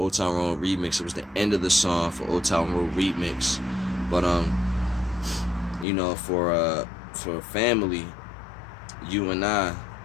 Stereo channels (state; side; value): drops out; right; at 5.9 s